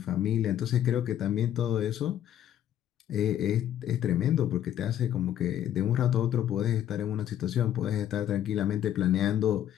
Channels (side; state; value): right; quieter; 11.0 dB